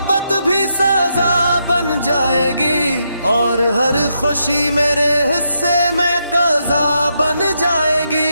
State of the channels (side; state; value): both; inverted; correlation -0.81